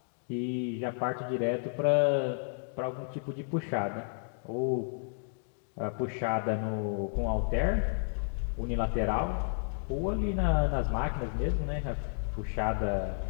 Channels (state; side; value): silent; right; digital silence